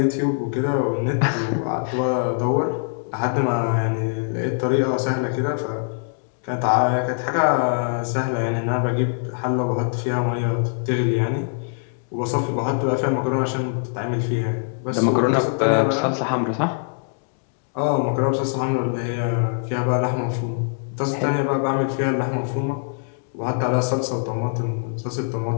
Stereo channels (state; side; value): silent; right; digital silence